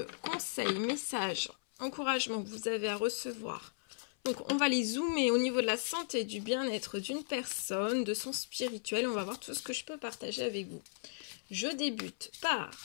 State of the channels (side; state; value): right; silent; 54 dB below the other